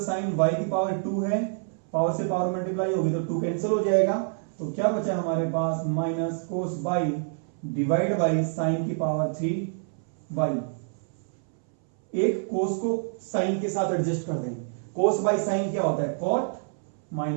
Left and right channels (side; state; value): left; silent; 60 dB below the other